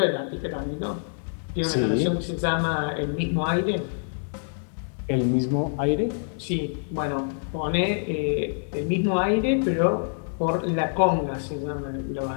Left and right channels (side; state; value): right; silent; digital silence